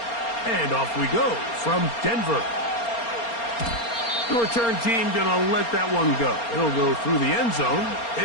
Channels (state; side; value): late; right; 4.3 ms